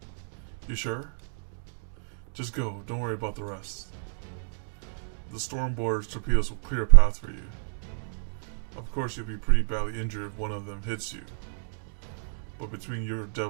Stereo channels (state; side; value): silent; left; digital silence